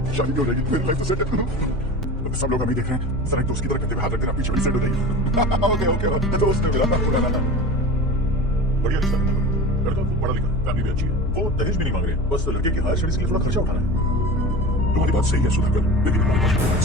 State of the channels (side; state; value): both; normal; correlation 0.33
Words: शादी भी हो जाएगी, मेरी लाइफ तो सेट है। सब लोग हमें देख रहे हैं, जरा एक दोस्त की तरह करते हुए हाथ रख देना, पीछे बड़ी सेट हो जाएगी। ओके दोस्त ने मिला था। बढ़िया रिश्ता है। लड़का पढ़ा लिखा, फैमिली भी अच्छी है। वो दहेज भी नहीं मांग रहे, बस लड़के की हायर स्टडीज के लिए थोड़ा खर्चा उठाना है। तुम्हारी बात सही है सुधाकर, लेकिन हमारे पास कोई